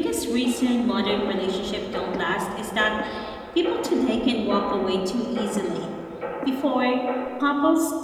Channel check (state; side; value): identical; both; correlation 1.00